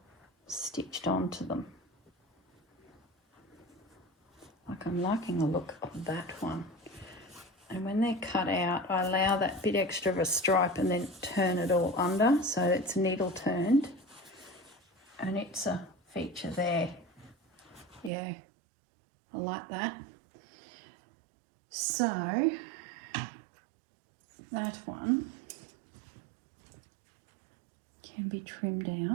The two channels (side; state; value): left; drops out; at 18.1 s